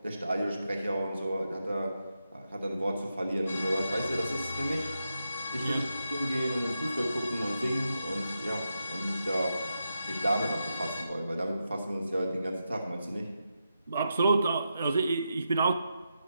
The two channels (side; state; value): both; inverted; correlation -0.86